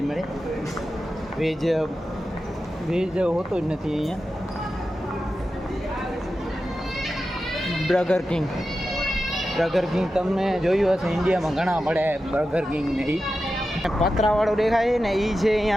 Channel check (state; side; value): normal; both; correlation 0.92